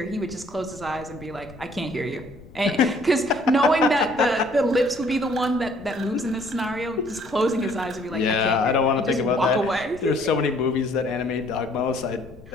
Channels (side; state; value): left; noise; rumble, 20 dB below the sound